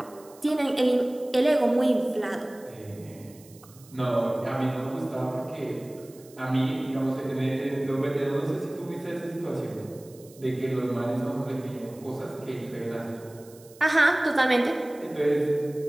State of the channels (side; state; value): right; noise; hiss, 24 dB below the sound